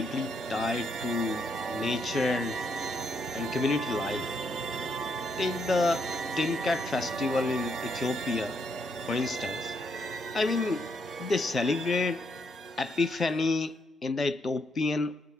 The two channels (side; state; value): both; normal; correlation 0.76